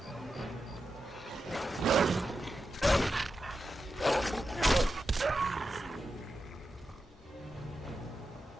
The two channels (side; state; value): both; normal; correlation 0.89